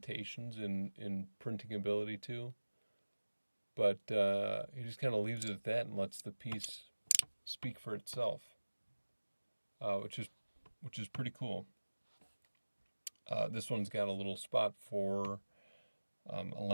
in printing ability too, but he just kind of leaves it at that and lets the piece speak for itself, which is pretty cool. This one's got a little spot for a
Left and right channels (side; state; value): both; inverted; correlation -1.00